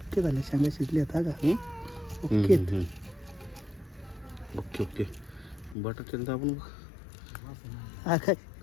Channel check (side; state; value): right; drops out; at 5.8 s